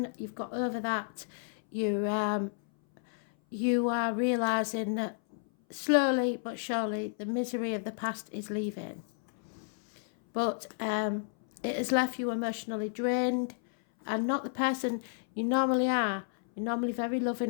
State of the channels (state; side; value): silent; right; 57 dB below the other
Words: you've got over that. You are realising that slowly but surely the misery of the past is leaving. But it has left you emotionally drained and not the person you normally are. You're normally very